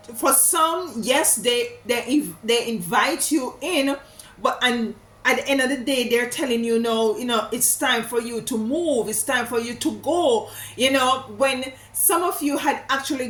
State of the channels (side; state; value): both; identical; correlation 1.00